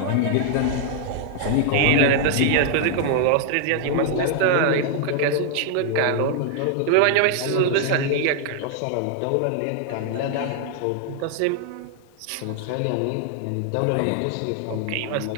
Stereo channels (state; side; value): different; both; correlation 0.00